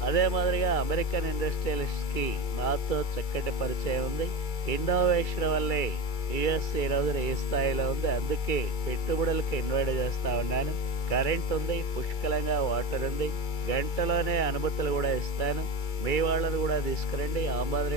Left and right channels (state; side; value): late; right; 2.3 ms